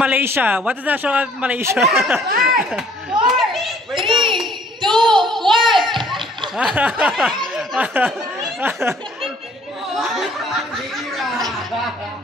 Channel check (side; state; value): both; normal; correlation 0.58